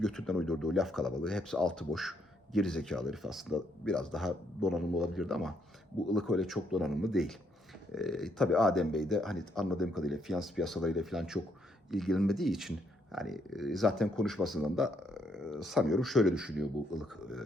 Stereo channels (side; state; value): both; normal; correlation 0.73